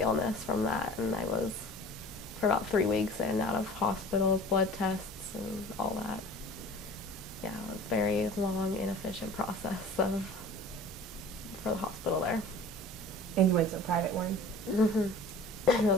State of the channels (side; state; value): both; normal; correlation 0.43